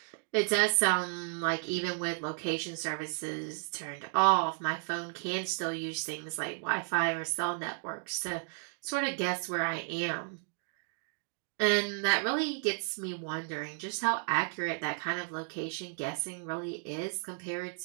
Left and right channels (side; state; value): left; silent; 56 dB below the other